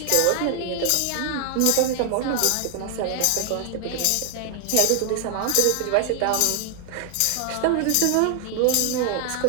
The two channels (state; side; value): different; both; correlation 0.00